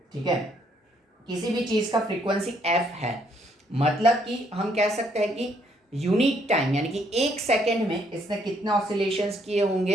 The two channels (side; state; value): both; normal; correlation 0.69